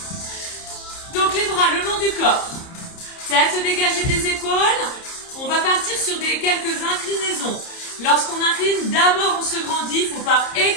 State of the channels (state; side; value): late; right; 30 ms